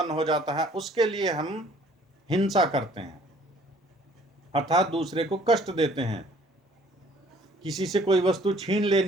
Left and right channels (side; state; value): both; normal; correlation 0.56